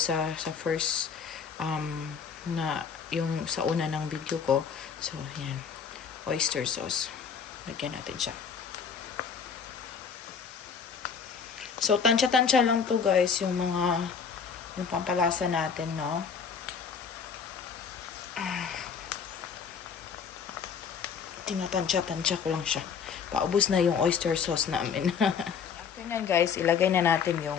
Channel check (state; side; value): quieter; right; 6.4 dB